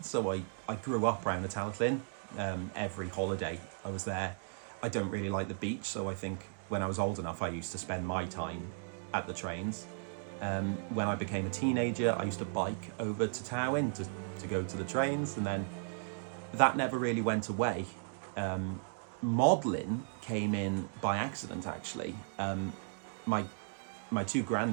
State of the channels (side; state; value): left; silent; digital silence